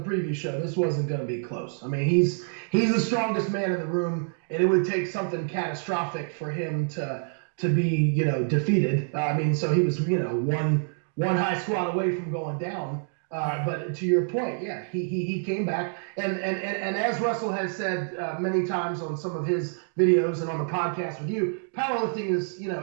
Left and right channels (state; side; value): silent; left; 60 dB below the other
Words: previous show, this wasn't going to be close. I mean, he's the strongest man in the room, and it would take something catastrophic for him to be defeated. So he was one high squat away from going down. But to your point, yeah, he came back, and as Russell has said many times on some of his videos and on the podcast with you, powerlifting is